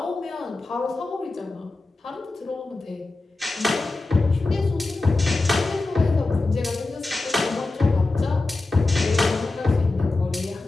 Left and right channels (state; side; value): quieter; right; 3.2 dB